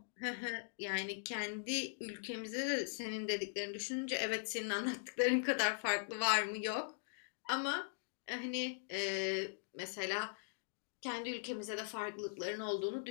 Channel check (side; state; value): right; silent; digital silence